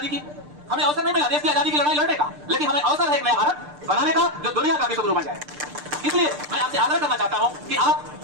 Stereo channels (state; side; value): late; left; 6.7 ms